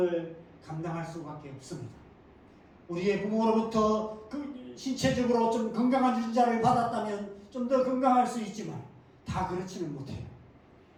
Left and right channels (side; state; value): both; identical; correlation 1.00